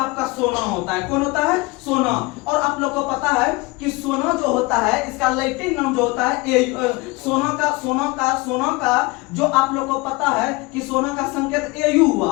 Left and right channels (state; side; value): quieter; right; 23.7 dB